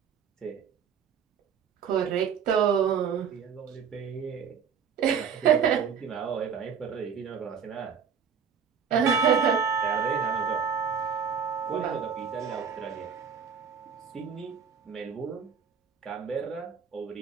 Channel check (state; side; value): quieter; left; 7.0 dB